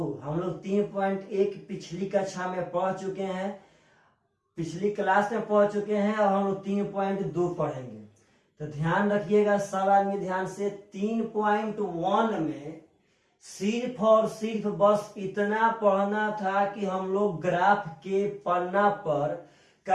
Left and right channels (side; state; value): both; identical; correlation 1.00